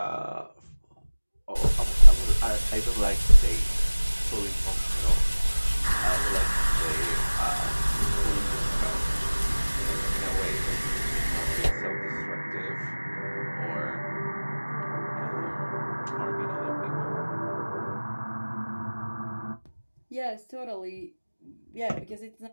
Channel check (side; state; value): both; inverted; correlation -1.00